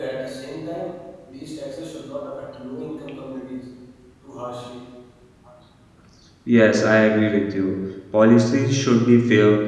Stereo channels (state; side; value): identical; both; correlation 1.00